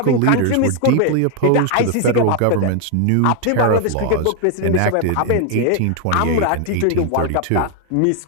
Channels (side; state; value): both; different; correlation 0.01